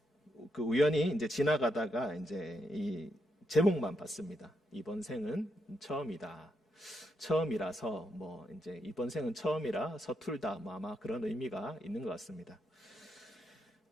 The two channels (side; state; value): both; normal; correlation 0.81